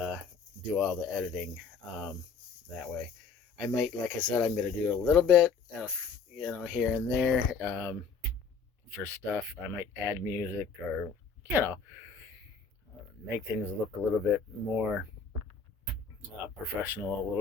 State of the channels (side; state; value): right; quieter; 5.3 dB